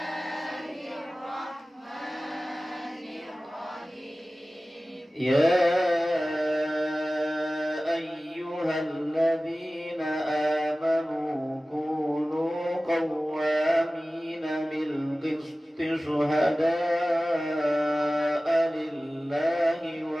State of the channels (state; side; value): normal; both; correlation 0.97